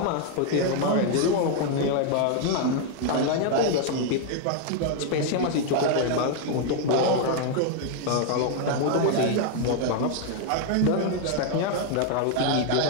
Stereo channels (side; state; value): both; different; correlation 0.00